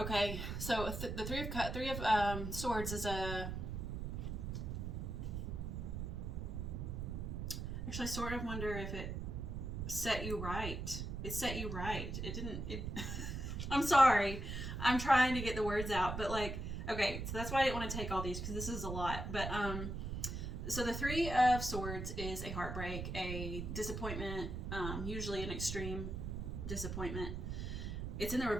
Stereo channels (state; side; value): noise; right; rumble, 4 dB below the sound